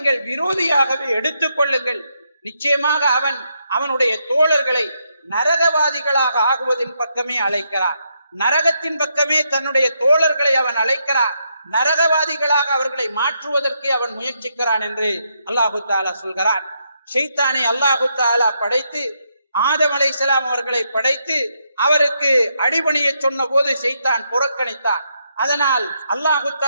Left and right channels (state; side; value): inverted; both; correlation -0.79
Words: விரோதியாகவே எடுத்துக் கொள்ளுங்கள். நிச்சயமாக அவன் அவனுடைய தோழர்களை நரகவாதிகளாக ஆகுவதின் பக்கமே அழைக்கிறான், நரகத்தின் பக்கமே தன்னுடைய தோழர்களை அவன் அழைக்கிறான், நரகவாதிகளாக அவர்களை மாற்றுவதற்கு அவன் முயற்சிக்கிறான் என்று அல்லாஹு தஆலா சொல்கிறான். ஷைத்தானை அல்லாஹு தஆலா படைத்து ஆதம் அலைஹிஸ்ஸலாம் அவர்களை படைத்து அவருக்கு அடிபணிய சொன்ன போது ஷைத்தான் புறக்கணித்தான். அதனால் அல்லாஹு